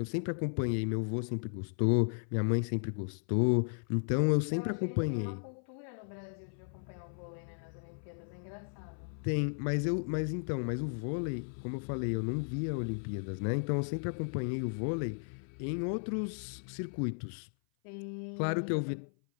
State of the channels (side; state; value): right; silent; 54 dB below the other